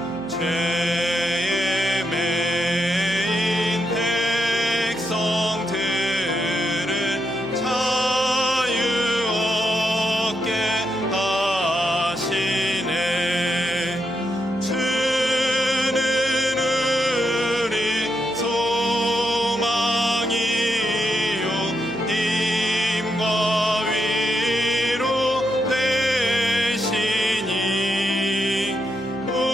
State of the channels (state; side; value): noise; right; hum, 19 dB below the sound